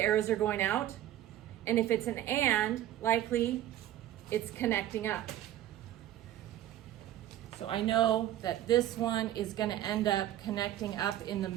arrows are going out. And if it's an and, likely it's connecting up. So I know that this one is going to end up connecting up in the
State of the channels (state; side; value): quieter; left; 12.8 dB